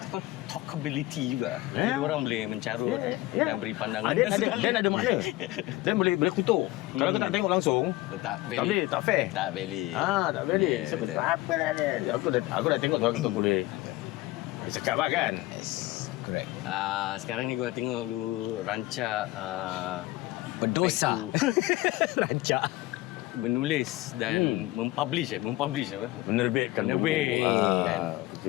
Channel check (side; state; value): right; quieter; 18.5 dB